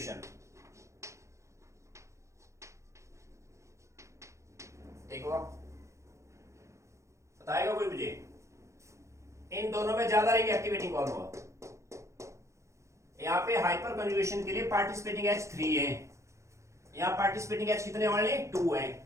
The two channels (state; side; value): late; left; 0.14 ms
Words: ठीक हुआ। बताएगा कोई मुझे इन दोनों में ज्यादा रिंग एक्टिवेटिंग कौन हुआ, यहां पे हाइपर कन्वेशन के लिए पार्टिसिपेटिंग एच 3 है, यहां पार्टिसिपेटिंग एच कितने वाले 2 है,